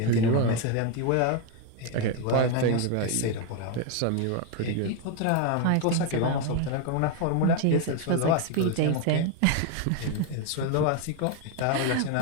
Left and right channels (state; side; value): different; both; correlation 0.01